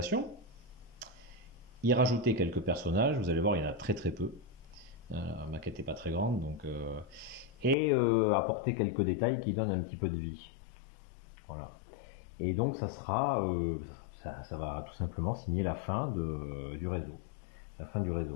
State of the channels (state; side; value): drops out; right; at 7.8 s